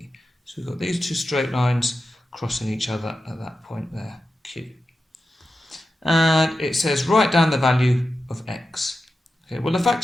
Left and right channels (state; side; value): normal; both; correlation 0.91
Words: So we've got these two straight lines crossing each other at that point there, Q. And it says write down the value of X. Okay, well, the